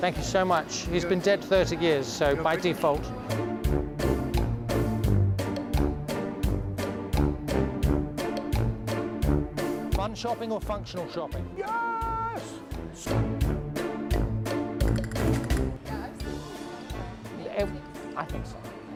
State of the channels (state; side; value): identical; both; correlation 1.00